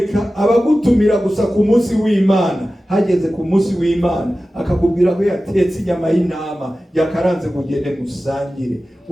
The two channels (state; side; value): normal; both; correlation 0.95